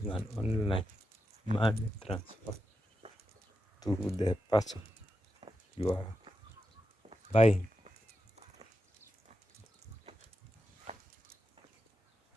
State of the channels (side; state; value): both; normal; correlation 0.88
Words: an online money transfer to the person you are buying.